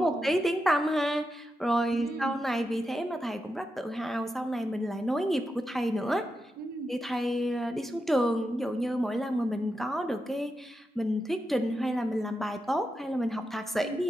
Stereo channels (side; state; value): both; normal; correlation 0.87